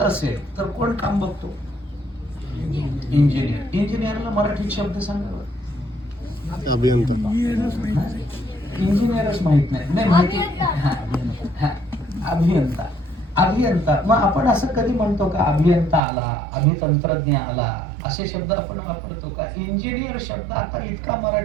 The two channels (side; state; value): left; drops out; at 16.0 s